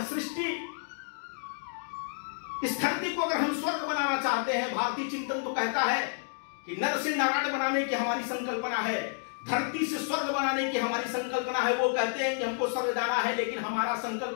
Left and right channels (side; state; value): right; silent; digital silence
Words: सृष्टि, इस धरती को अगर हम स्वर्ग बनाना चाहते हैं, भारतीय चिंतन तो कहता है कि नर से नारायण बनाने की हमारी संकल्पना है, धरती से स्वर्ग बनाने की हमारी संकल्पना है। वो कहते हैं कि हमको स्वर्ग जाना है, लेकिन हमारा